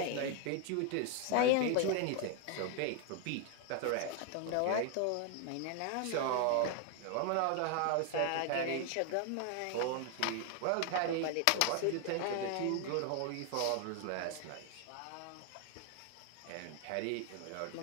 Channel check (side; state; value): both; different; correlation 0.00